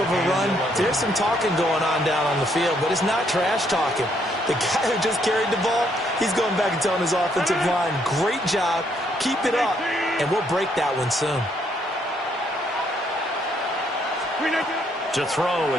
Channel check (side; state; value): both; normal; correlation 0.71